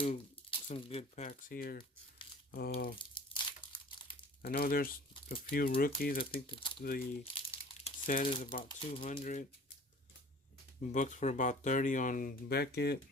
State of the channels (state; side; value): normal; both; correlation 0.46